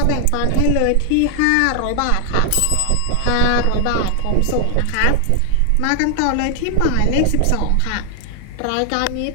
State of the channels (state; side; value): different; both; correlation 0.00